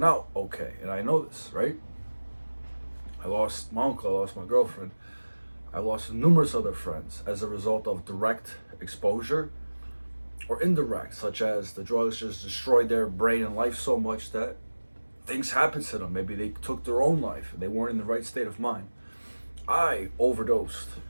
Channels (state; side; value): inverted; both; correlation -1.00